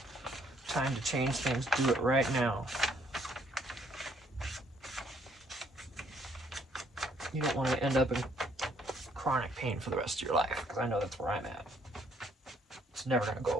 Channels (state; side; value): normal; both; correlation 0.66